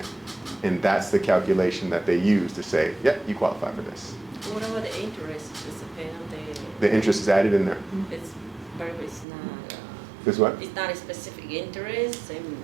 And that's the calculation that they use to say, yep, you qualify for this. What about the interest? Is it paid on The interest is added in there. it's, but it's not, Is what? it's not a specific interest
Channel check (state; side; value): drops out; left; at 9.2 s